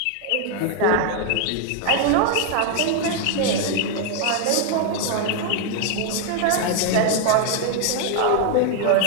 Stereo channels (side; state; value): both; different; correlation 0.00